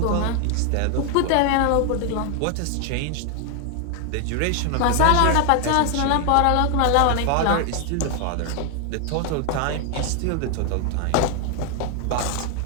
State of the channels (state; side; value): different; both; correlation 0.00